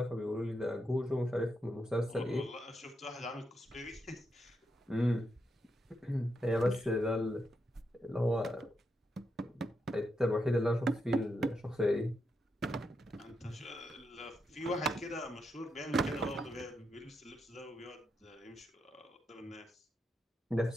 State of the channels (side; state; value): both; normal; correlation 0.83